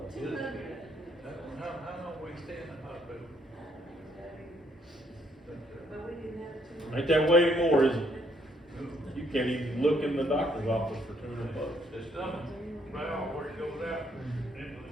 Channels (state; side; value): normal; both; correlation 0.70